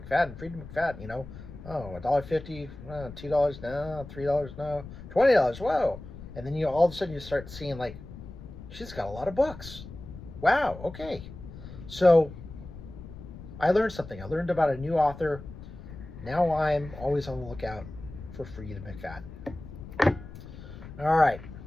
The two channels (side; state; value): left; noise; rumble, 14 dB below the sound